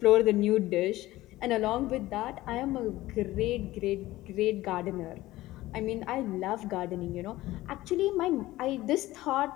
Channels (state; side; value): quieter; right; 17.0 dB